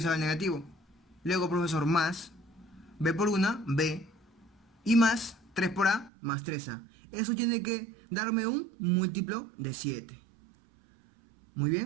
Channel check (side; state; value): left; drops out; at 6.1 s